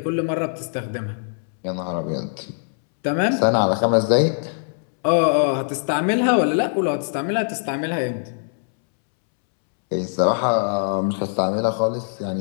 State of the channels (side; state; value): right; silent; 64 dB below the other